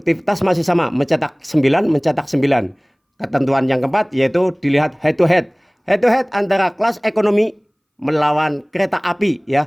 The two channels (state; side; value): identical; both; correlation 1.00